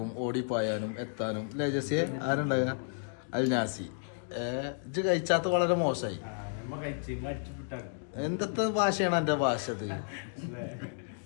ഓടിപ്പായാനും എത്താനും അല്ലേ ജസ്സി? ആരുണ്ടായ അൽനാസി ഇത് കഴിച്ചാത്ത വളരെ മോശമായി. എന്തൊക്കെ ഭാഷയാണ് എന്റെ ഭാഷ? ഇത്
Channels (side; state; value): right; silent; digital silence